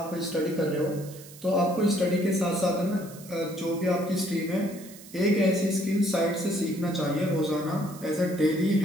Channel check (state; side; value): noise; right; hiss, 19 dB below the sound